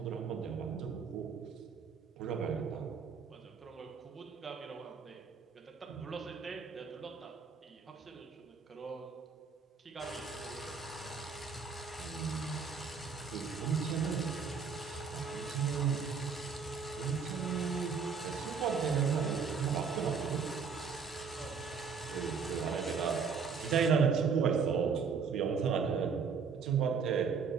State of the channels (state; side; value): quieter; left; 5.7 dB